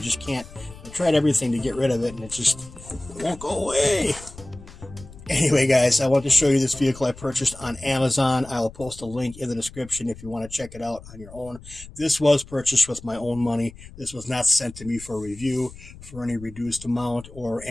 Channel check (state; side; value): noise; left; rumble, 18 dB below the sound